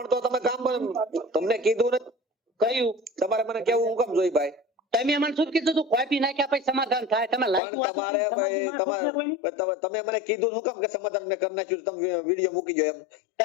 તો તમે કામ તમને કીધું ને, કયું? તમારે મને કેવું હું કામ જોઈ ભાઈ? તમે મને શું કીધું તું? કોપી નાખ્યા પછી સમાધાન થાય. તમે પણ લાગ્યું તમારે ભાઈ તમે મને કીધું શું કામ કે સમાધાન મેં કરી નાખ્યું, તમે વિડીયો મૂકી જો એમ?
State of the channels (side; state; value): right; drops out; at 7.6 s